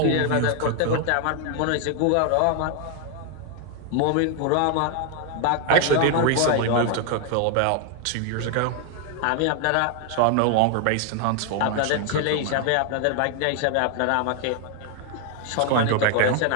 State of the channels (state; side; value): different; both; correlation 0.00